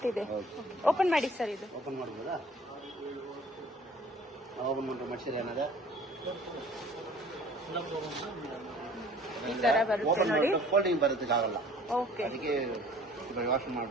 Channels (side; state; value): both; normal; correlation 0.51